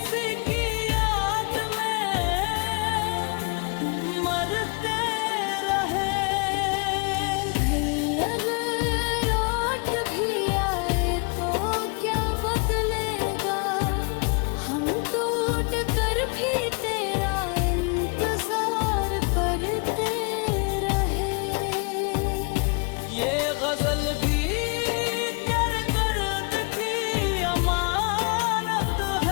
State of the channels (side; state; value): right; quieter; 34.0 dB